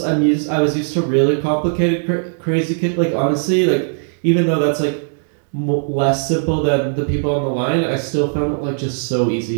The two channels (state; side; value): silent; left; digital silence